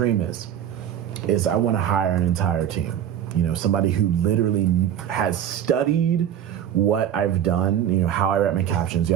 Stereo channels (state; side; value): quieter; left; 10.0 dB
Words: is I want to hire an entire team. You know, somebody who literally has studied what I've done, you know, how I write my captions,